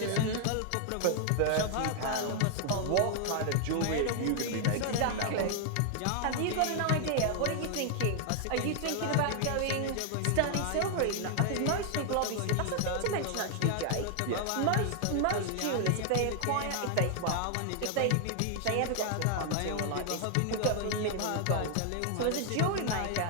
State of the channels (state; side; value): different; both; correlation 0.00